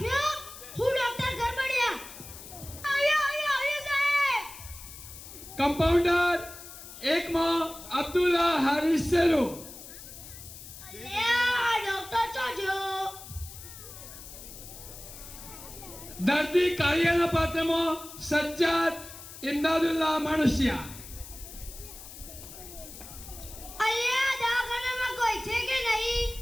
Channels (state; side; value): noise; left; hiss, 14 dB below the sound